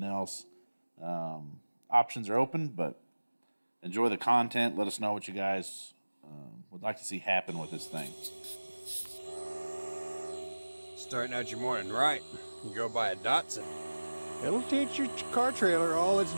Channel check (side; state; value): both; inverted; correlation -1.00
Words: else, options are open. But enjoy the content. Let us know what you guys would like to see happen with this thing. Starting out your morning right, you go buy a Datsun. It'll teach your car trailer all its